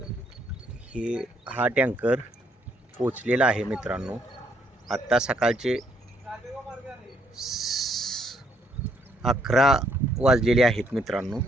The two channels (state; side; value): normal; both; correlation 0.71